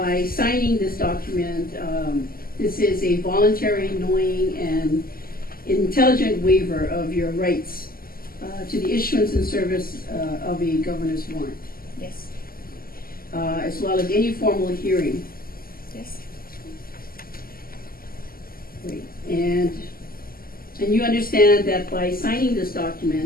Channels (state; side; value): late; right; 0.42 ms